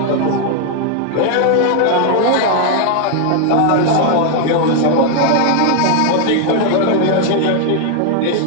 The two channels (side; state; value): both; different; correlation 0.00